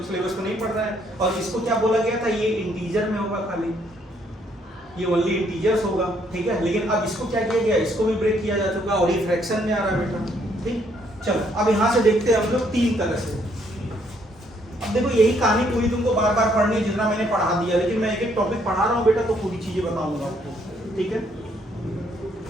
सिलेबस को नहीं पढ़ रहे हैं। और इसको क्या बोला गया था, ये इंटीजर में होगा, खाली ये ओनली इंटीजर्स होगा, ठीक है। लेकिन अब इसको क्या किया गया, इसको भी ब्रेक किया जा चुका और ये फ्रैक्शन में आ रहा है बेटा, ठीक। चलो अब यहाँ से देखते हैं हम लोग 3 तरह से। अब देखो यही कहानी पूरी तुमको बार बार पढ़नी है, जितना मैंने पढ़ा दिया, लेकिन मैं एक एक टॉपिक पढ़ा रहा हूँ बेटा, तो पूरी चीजें बताऊंगा आपको, ठीक है।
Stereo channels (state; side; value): normal; both; correlation 0.69